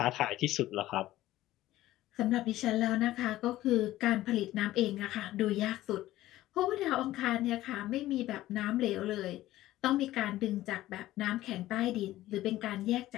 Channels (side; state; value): right; quieter; 15.4 dB